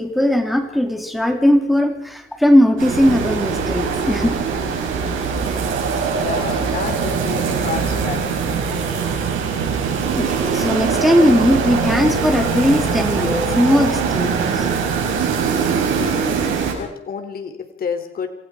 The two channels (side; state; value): both; normal; correlation 0.67